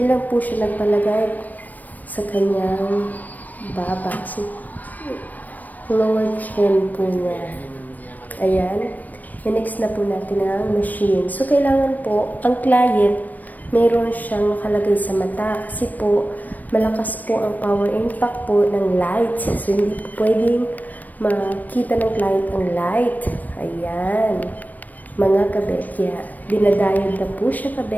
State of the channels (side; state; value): right; late; 0.083 ms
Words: lang po siya nagpalagay sa kanyang baba. Lower chin po niya. Ayan. I-next na po natin ang machine. So, kailangan po, ang client, meron siyang nakalagay sa mata. Kasi po, malakas po ang power impact po ng light. So, hindi po pwedeng makita ng client ang light. Ayan. Mga kabekya. Dinadiode na po siya,